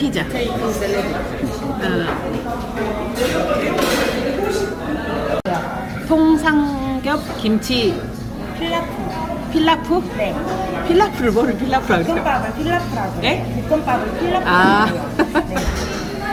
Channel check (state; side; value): identical; both; correlation 1.00